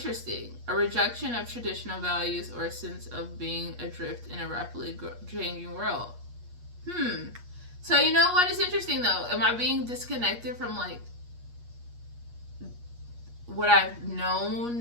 A rejection of traditional values or a sense of being adrift in a rapidly changing world. So you know what is interesting though? Am I being disconnected from like what I've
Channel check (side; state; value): left; late; 8.4 ms